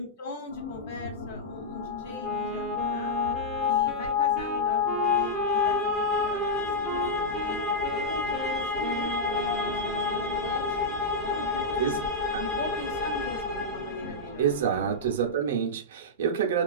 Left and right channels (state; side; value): normal; both; correlation -0.07